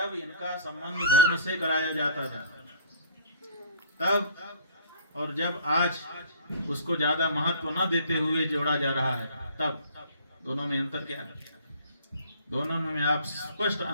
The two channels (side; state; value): both; inverted; correlation -0.51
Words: इनका संबंध धर्म से कराया जाता था तब, और जब आज उसको ज्यादा महत्व न देते हुए जोड़ा जा रहा है तब, दोनों में अंतर क्या है? दोनों में आप स्पष्ट